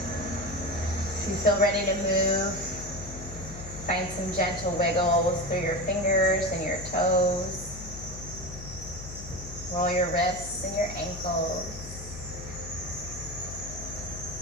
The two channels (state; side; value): noise; left; hum, 11 dB below the sound